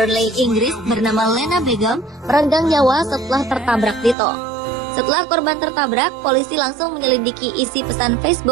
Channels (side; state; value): left; drops out; at 4.2 s